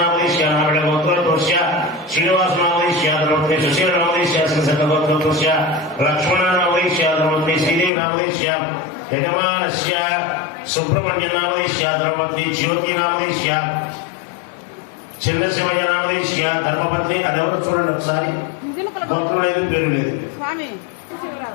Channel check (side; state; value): right; drops out; at 7.9 s